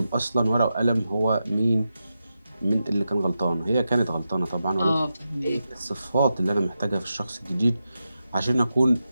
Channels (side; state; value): both; inverted; correlation -0.89